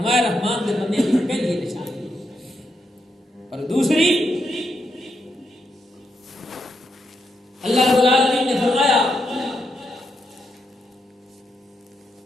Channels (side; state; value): both; normal; correlation 0.82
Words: رحمان دے بندے کی پہلی نشانی. اور دوسری اللہ رب العالمین نے فرمایا